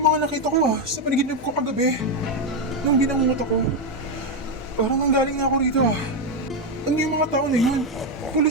mga nakita ko sa panaginip ko kagabi. Nung binangungot ako. Parang nanggaling na ako rito Ano yung mga tao na yun?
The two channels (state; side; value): normal; both; correlation 0.06